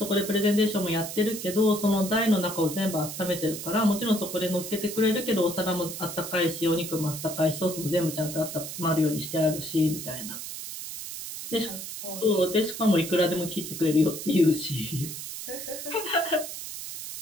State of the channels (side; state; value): right; noise; hiss, 8 dB below the sound